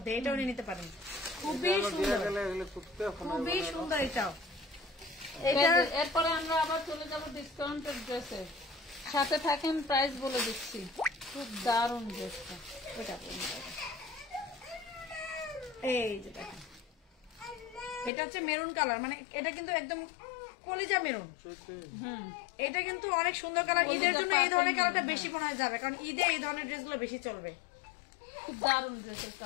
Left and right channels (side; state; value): right; drops out; at 18.1 s